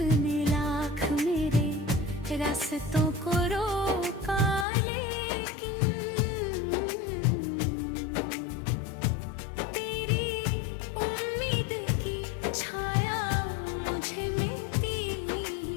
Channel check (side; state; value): right; drops out; at 4.7 s